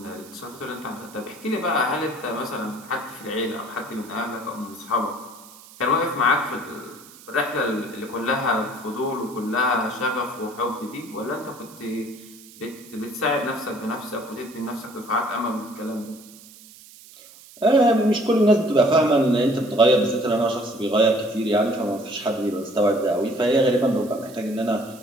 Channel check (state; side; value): noise; right; hiss, 21 dB below the sound